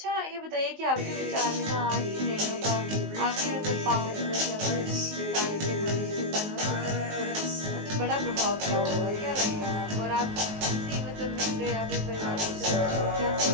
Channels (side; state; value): left; late; 19 ms